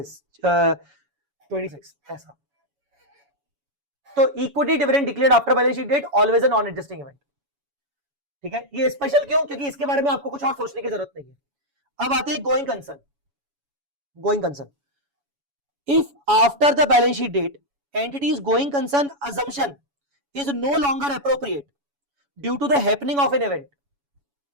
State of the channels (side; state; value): left; late; 7.1 ms